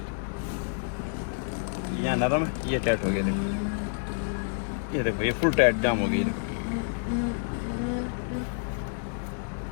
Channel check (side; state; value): right; silent; digital silence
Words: यहाँ नरम है, ये टाइट हो गया, देखो ये फुल टाइट जाम हो गई, देखो।